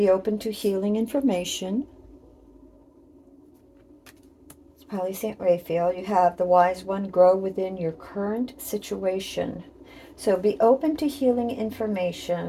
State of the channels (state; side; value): identical; both; correlation 1.00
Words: open to healing information. It's probably St. Raphael. You have the Wise One, grow within your current situation. So be open to healing